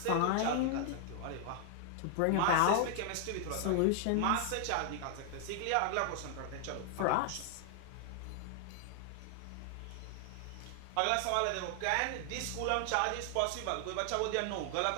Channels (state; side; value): different; both; correlation 0.00